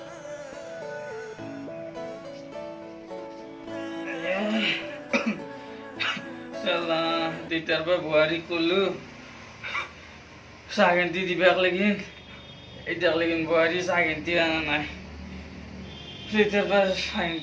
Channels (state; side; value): identical; both; correlation 1.00